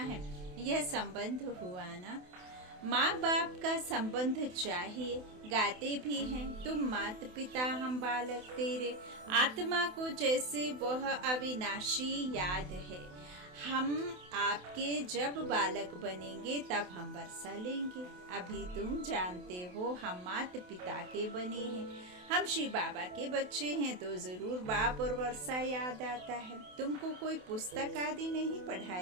हैं। यह संबंध हुआ ना। माँ बाप का संबंध चाहिए। गाते भी हैं तुम माता पिता हम बालक तेरे। आत्मा को जैसे वह अविनाशी याद है। हम आपके जब बालक बनेंगे तब हम वर्षा लेंगे। अभी तुम जानते हो हम माता पिता के बने हैं। हम श्री बाबा के बच्चे हैं तो जरूर बाप और वर्षा याद आता है। तुमको कोई पुस्तक आदि नहीं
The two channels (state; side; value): late; left; 28 ms